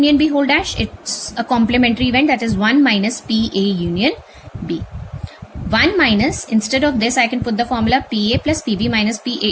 B whole dash? It's a complementary event, that is 1 minus P A union B. 1 minus, instead of this I can put the formula PA plus PB minus PA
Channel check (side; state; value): both; identical; correlation 1.00